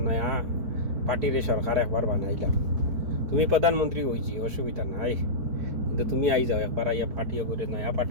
নয়া পার্টিরে সরকার একবার বানাইলাম। তুমি প্রধানমন্ত্রী হয়েছি, অসুবিধা নাই, কিন্তু তুমি আই যাও একবার, আইয়া পার্টিও করে নয়া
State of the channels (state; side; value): late; left; 4.5 ms